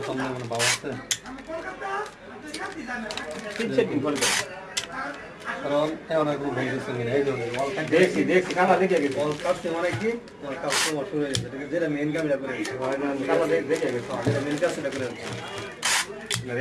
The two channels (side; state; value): both; identical; correlation 1.00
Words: মানে ভাব আছে, কারণ এমন এক ভুল গেছে এই ধরনের দেখছি দেখছি কালা দেখে গেছে অল কাছে মানে কি অল কাজ তো শুরু হয়ে গেছে, যেটা মেইন কাজটা করে হয় না কালা দেখে গেছে, যেটা মেইন কাজটা করে